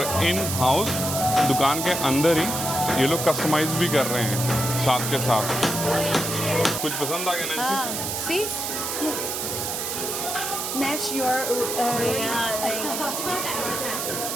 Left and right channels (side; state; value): right; noise; hiss, 3 dB below the sound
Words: इन हाउस दुकान के अंदर ही ये लोग कस्टमाइज भी कर रहे हैं साथ के साथ। कुछ पसंद आ गया नैन्सी? हाँ, सी Match your ring.